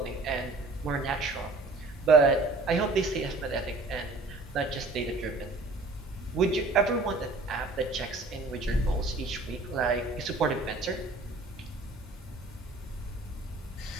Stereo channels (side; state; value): left; quieter; 3.1 dB